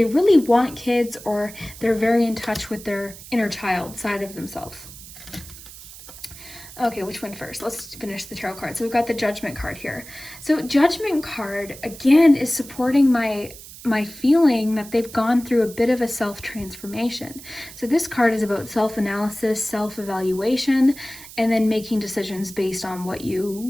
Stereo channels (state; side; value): noise; right; hiss, 16 dB below the sound